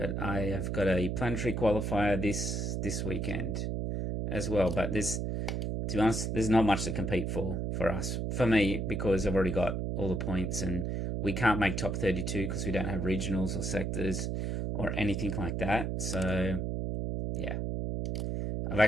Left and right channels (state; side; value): noise; right; hum, 1 dB below the sound